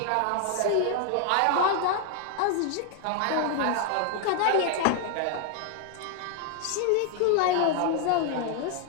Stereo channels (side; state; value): both; different; correlation 0.00